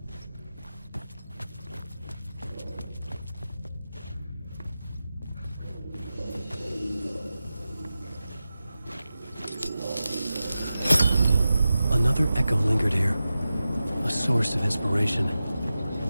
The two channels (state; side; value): inverted; both; correlation -0.93